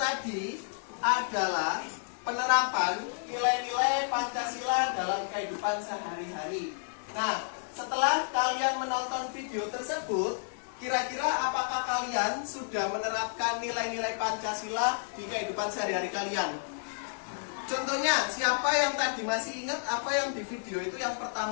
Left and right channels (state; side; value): silent; right; 56 dB below the other